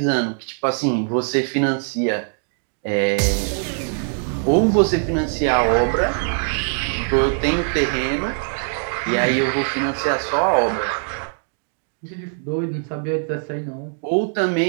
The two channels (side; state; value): left; silent; 58 dB below the other